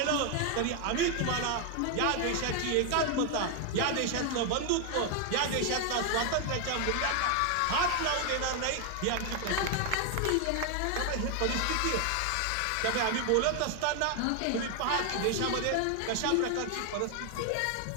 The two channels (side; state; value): both; different; correlation 0.01